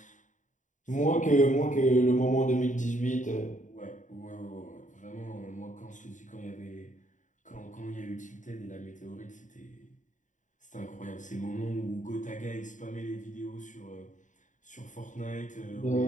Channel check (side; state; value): right; late; 0.36 ms